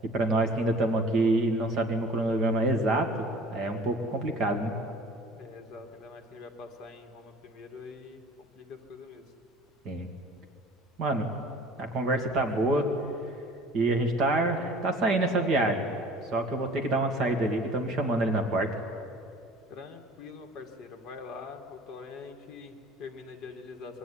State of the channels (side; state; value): both; normal; correlation 0.47